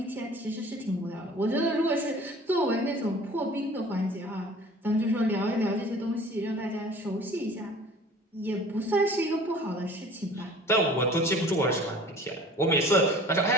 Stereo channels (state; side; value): normal; both; correlation 0.46